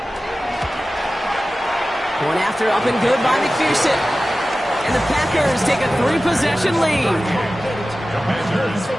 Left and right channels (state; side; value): normal; both; correlation 0.95